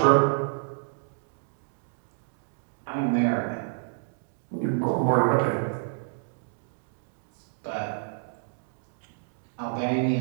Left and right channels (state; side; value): silent; left; digital silence